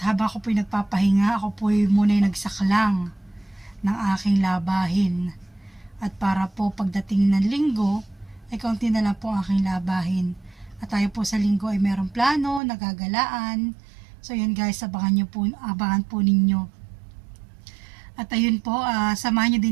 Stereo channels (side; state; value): left; drops out; at 12.6 s